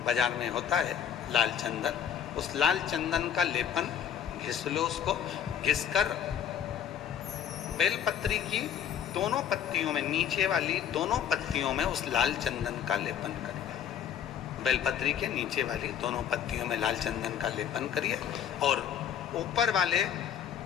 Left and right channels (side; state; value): right; quieter; 9.0 dB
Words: बाजार में होता है, लाल चंदन, उस लाल चंदन का लेपन घिस लो। उसको घिसकर बेलपत्री की दोनों पत्तियों में, नीचे वाली दोनों पत्तियों में उस लाल चंदन का लेपन करिए। बेलपत्री के नीचे वाली दोनों पत्तियों में लाल चंदन का लेपन करिए और ऊपर वाले